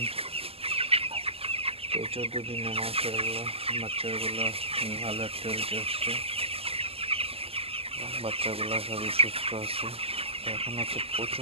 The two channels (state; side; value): late; left; 0.28 ms